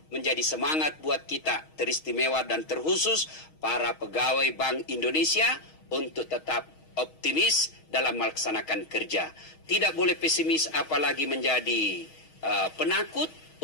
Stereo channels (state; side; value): late; right; 6.3 ms